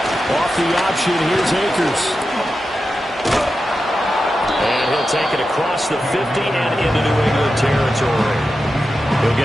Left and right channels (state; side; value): normal; both; correlation 0.91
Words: Off the option, here's Akers. And he'll take it across the 50 and into New England territory. He'll